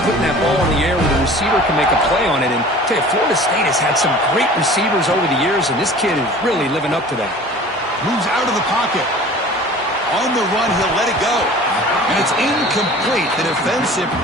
putting that ball in the air where the receiver can make a play on it. And I tell you, Florida State has had some great receivers over the years, and this kid is really living up to that. Moves out of the pocket. On the run, he'll let it go. And it's incomplete. The defensive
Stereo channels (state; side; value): normal; both; correlation 0.44